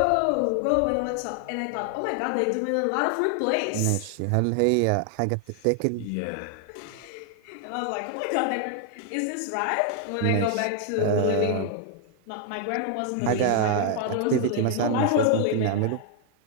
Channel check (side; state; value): both; different; correlation 0.00